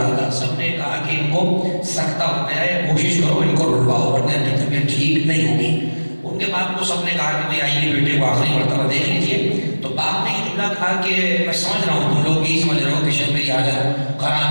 تھا. سب نے کہا کہ ان کو سکتہ ہو گیا ہے، کوشش کرو ان کو رلواؤ ورنہ ان کی طبیعت ٹھیک نہیں ہوگی. ان کے باپ کو سب نے کہا کہ بھئی آئیے بیٹے کو آخری مرتبہ دیکھ لیجیے. تو باپ نے یہ جملہ کہا کہ میں سمجھ رہا ہوں تم لوگ یہی سمجھ رہے ہو کہ شاید میری حالت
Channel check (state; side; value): inverted; both; correlation -1.00